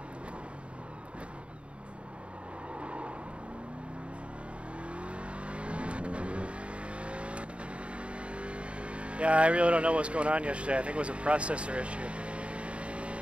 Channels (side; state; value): left; late; 0.060 ms